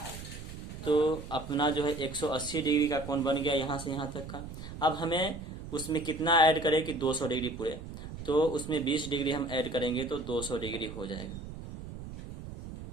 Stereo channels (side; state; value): right; noise; rumble, 11 dB below the sound